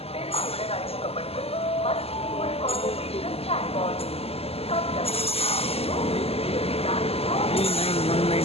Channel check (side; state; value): right; late; 0.29 ms